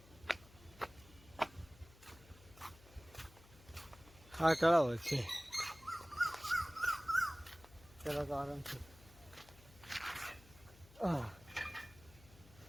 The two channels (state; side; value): noise; left; hum, 23 dB below the sound